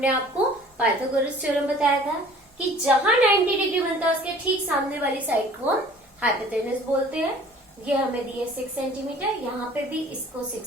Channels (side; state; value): both; normal; correlation 0.50